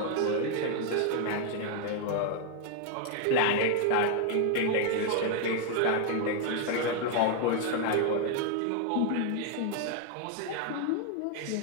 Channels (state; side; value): different; both; correlation 0.00